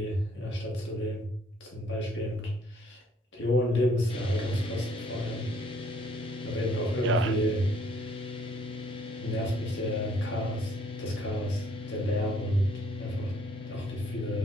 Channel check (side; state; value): both; normal; correlation 0.63